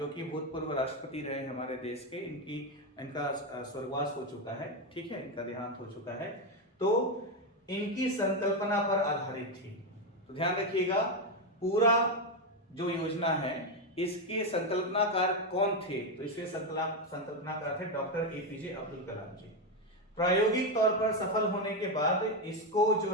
कि भूतपूर्व राष्ट्रपति रहे हमारे देश के, इनका स्वर्गवास हो चुका है, ठीक है, इनका देहांत हो चुका है, तो इनकी संकल्पना पर आधारित थी। तो ध्यान रखिएगा, पूरा जो योजना है इसके संकल्पनाकार कौन थे, तो इसके संकल्पनाकार थे डॉक्टर APJ अब्दुल कलाम जी। प्रायोगिक तौर पर सफल होने के बाद इसको जो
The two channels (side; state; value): both; normal; correlation 0.08